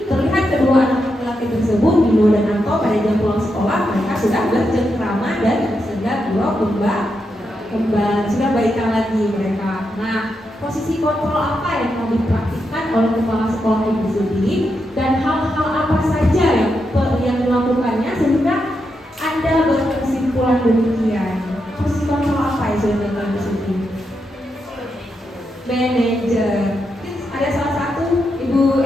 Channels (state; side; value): normal; both; correlation 0.84